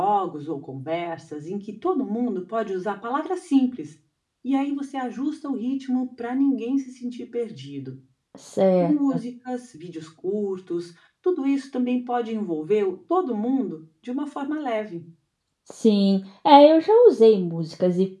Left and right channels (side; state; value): both; identical; correlation 1.00